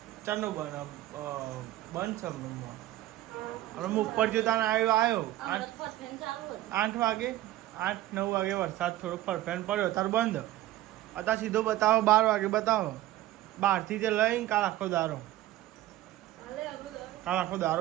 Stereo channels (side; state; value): left; quieter; 15.1 dB